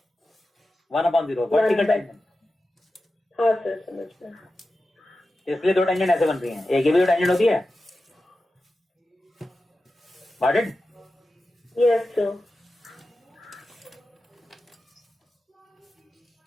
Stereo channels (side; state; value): both; normal; correlation 0.93